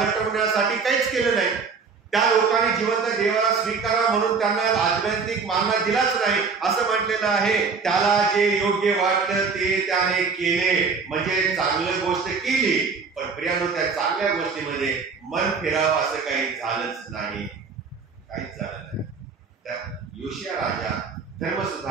काहीच केलं नाही. त्या लोकांनी जिवंत देवाला स्वीकारा म्हणून त्यांना आध्यात्मिक मानना दिलाच नाही. असं म्हटलेलं आहे, त्याला जे योग्य वाटलं ते त्याने केले, म्हणजे चांगली गोष्ट केली. पण प्रियानो, त्या चांगल्या गोष्टीमध्ये मन फिरावं असं काही झालंच नाही, काहीच झालं नाही. त्या योशिया राजा धर्म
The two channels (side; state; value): left; quieter; 5.1 dB